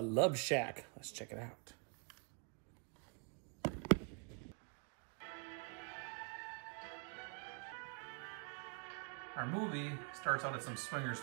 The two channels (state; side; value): quieter; left; 37.6 dB